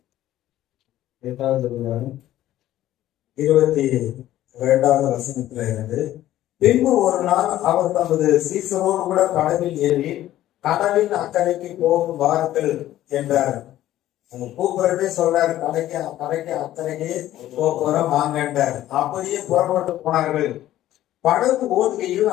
22வது வசனத்துல இருந்து, பின்பு ஒரு நாள் அவர் தமது சீசரோடு கூட படவில் ஏறி கடலின் அக்கறைக்கு போகும் வாருங்கள் என்றார். கூப்பிடவே சொல்றாரு, கரைக்கு அக்கறைக்கு போறோம் வாங்கன்றார். அப்படியே புறப்பட்டு போனார்கள். படகு ஓடுகையில்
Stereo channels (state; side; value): quieter; right; 13.7 dB